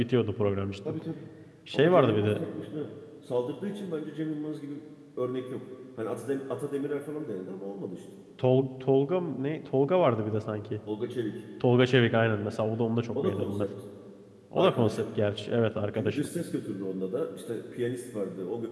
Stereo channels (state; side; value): identical; both; correlation 1.00